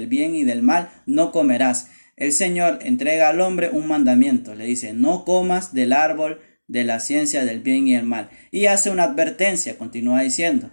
bien y del mal no comerás. El Señor entrega al hombre un mandamiento, le dice, no comas del árbol de la ciencia del bien y el mal. Y hace una advertencia, continúa diciendo,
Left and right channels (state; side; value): inverted; both; correlation -1.00